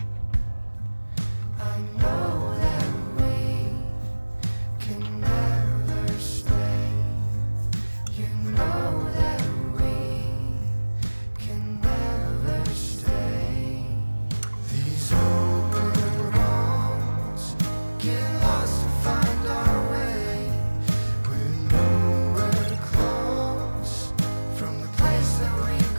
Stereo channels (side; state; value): both; inverted; correlation -1.00